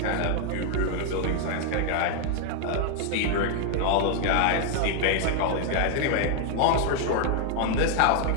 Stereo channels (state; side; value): different; both; correlation 0.00